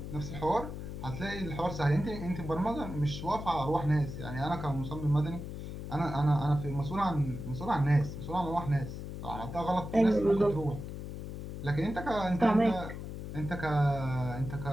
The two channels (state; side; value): noise; left; hum, 8 dB below the sound